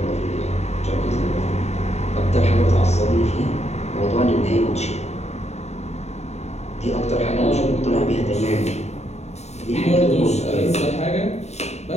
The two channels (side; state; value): right; late; 0.32 ms